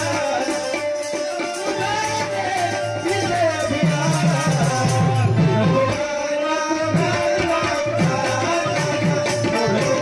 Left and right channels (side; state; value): both; identical; correlation 1.00